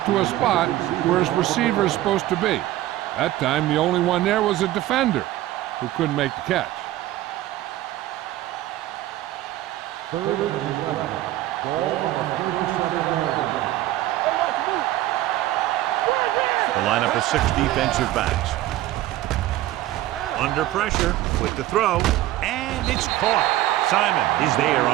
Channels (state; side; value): quieter; left; 15.2 dB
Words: to a spot where his receiver is supposed to be. That time, the only one there was a defender who couldn't make the catch. 3rd and 11. Ball on the 37-yard line. The lineup of 6 defensive backs. Under pressure with the throw, and it's caught. Simon is there